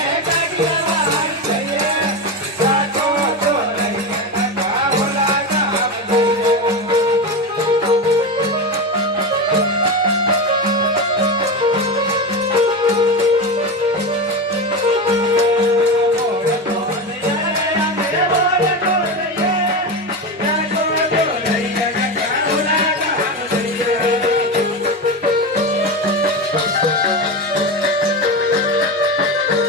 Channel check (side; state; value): both; normal; correlation 0.18